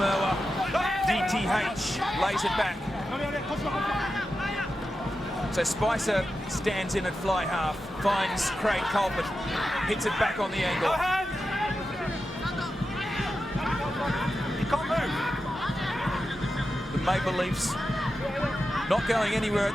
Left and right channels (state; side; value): normal; both; correlation 0.90